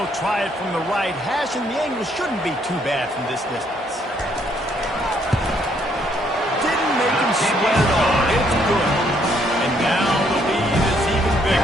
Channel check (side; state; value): both; normal; correlation 0.69